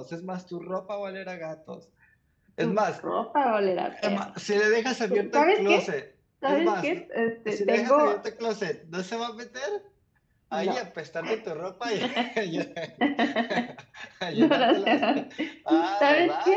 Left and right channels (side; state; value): both; identical; correlation 1.00